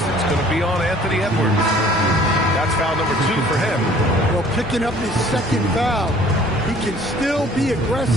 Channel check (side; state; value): both; normal; correlation 0.54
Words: It's going to be on Anthony Edwards. That's foul number 2 for him. Well, picking up his second foul. He can still be